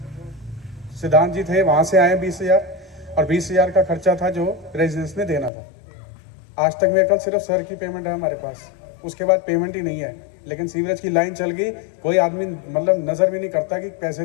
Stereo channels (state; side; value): drops out; right; at 5.5 s